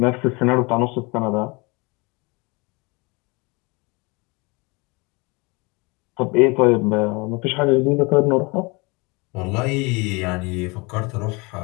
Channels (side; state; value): right; quieter; 27.4 dB